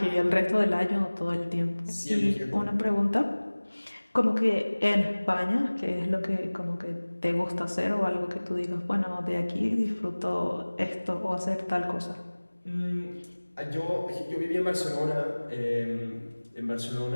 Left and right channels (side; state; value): both; inverted; correlation -1.00